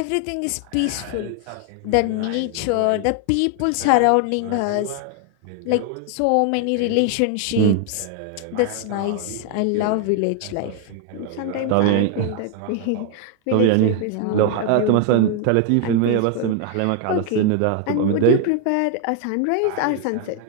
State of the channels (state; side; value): different; both; correlation 0.00